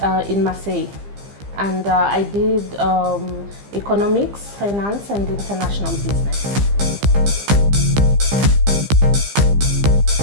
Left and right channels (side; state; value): left; late; 15 ms